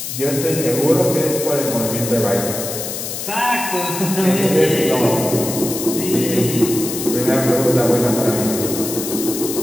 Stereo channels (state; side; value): noise; left; hiss, 6 dB below the sound